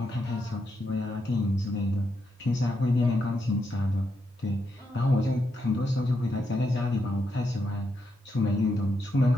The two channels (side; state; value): both; normal; correlation 0.82